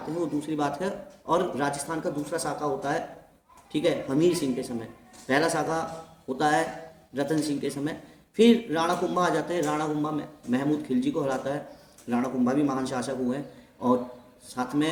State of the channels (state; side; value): identical; both; correlation 1.00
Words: हैं, वो दूसरी बात है। और राजस्थान का दूसरा शाखा होता है, ठीक है, हमीर सिंह के समय। पहला शाखा होता है रतन सिंह के समय। फिर राणा कुंभा आ जाते हैं, राणा कुंभा महमूद खिलजी को हराता है। राणा कुंभा भी महान शासक हुए और साथ